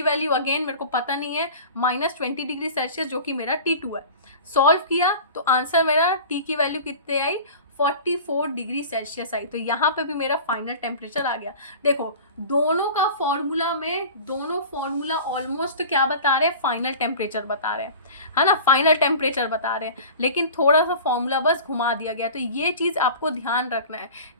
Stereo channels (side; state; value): both; inverted; correlation -0.38